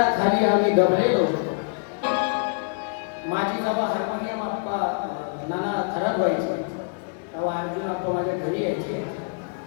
आम्ही दबलेलो होतो. माझी जेव्हा हार्मोनियम आप्पा नाना खराब व्हायची तेव्हा अर्जुन आप्पा माझ्या घरी यायचे.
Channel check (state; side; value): quieter; right; 37.6 dB